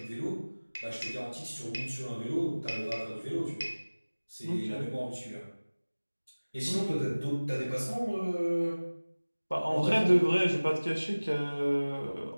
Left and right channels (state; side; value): inverted; both; correlation -1.00